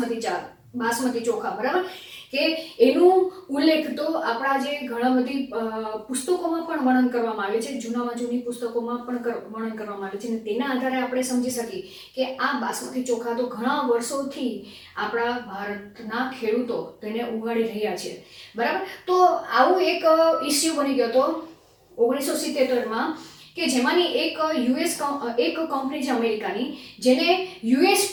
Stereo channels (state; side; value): identical; both; correlation 1.00